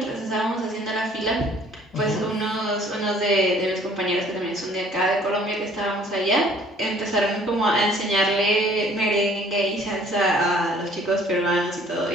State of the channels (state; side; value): normal; both; correlation 0.56